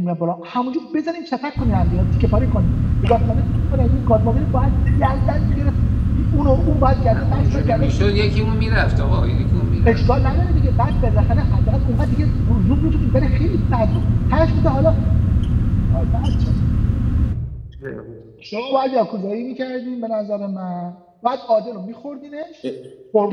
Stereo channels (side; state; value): both; identical; correlation 1.00